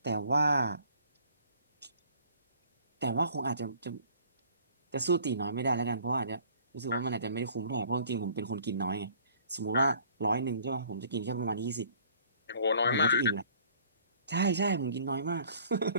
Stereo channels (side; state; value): both; inverted; correlation -0.54